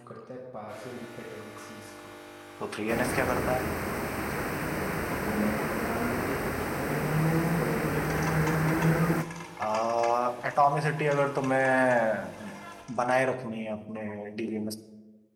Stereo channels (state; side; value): identical; both; correlation 1.00